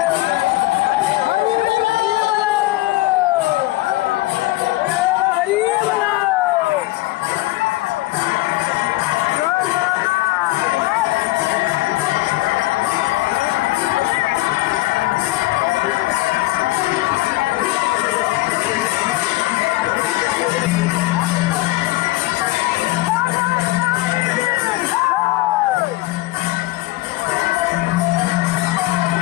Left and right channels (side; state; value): right; quieter; 19.1 dB